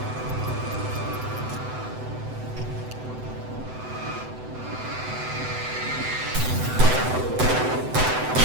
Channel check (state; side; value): late; left; 7.9 ms